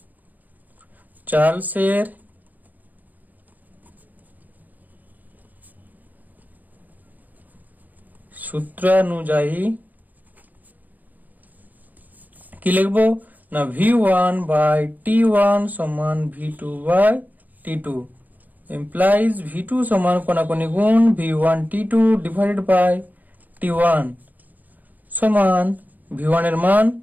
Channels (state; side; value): late; left; 0.082 ms